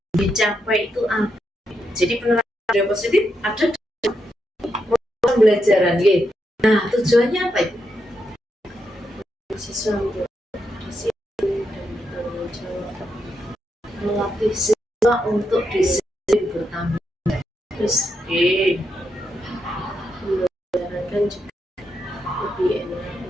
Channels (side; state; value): both; normal; correlation 0.83